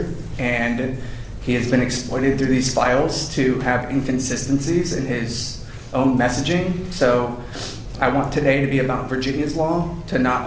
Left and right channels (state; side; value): identical; both; correlation 1.00